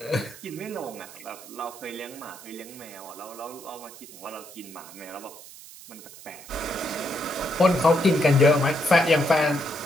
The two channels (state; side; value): noise; right; hiss, 17 dB below the sound